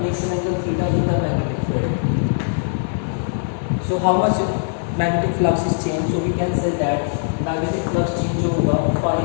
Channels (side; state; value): right; silent; 63 dB below the other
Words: makes an angle theta in the magnetic field. So how much magnetic flux is change, so we can say that magnetic flux change जो होगा phi